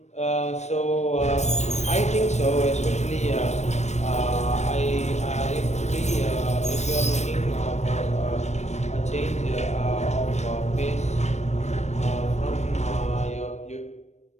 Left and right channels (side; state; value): right; late; 0.33 ms